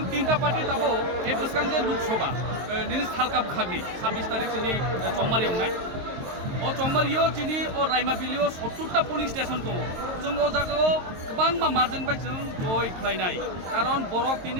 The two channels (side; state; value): left; late; 22 ms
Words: तीनटा पार्टी ताबो ए बसकां जे लोकसभा दिनै सालका बखागनि 26 तारिख चिनि चौमारि अंनाय ओ चौमारियो चिनि ओ रायमाबिलियो 70टा पुलिस स्टेशन दङ जों ओ जागायाव गोबां मार्जिन बाय जों जय खालायनाय कारण बरक